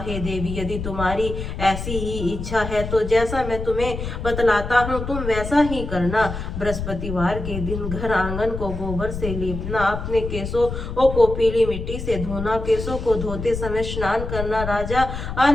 देवी, यदि तुम्हारी ऐसी ही इच्छा है तो जैसा मैं तुम्हें बतलाता हूँ तुम वैसा ही करना। बृहस्पतिवार के दिन घर आंगन को गोबर से लीपना, अपने केसों को पीली मिट्टी से धोना, केसों को धोते समय स्नान करना, राजा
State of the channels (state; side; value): noise; left; rumble, 6 dB below the sound